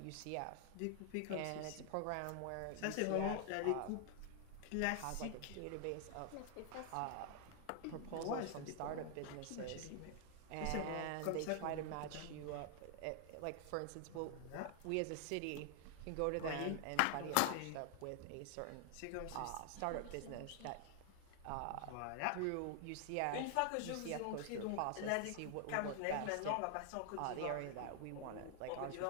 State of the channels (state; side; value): different; both; correlation 0.00